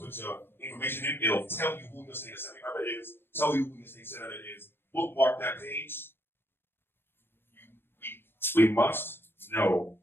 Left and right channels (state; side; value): late; right; 0.10 ms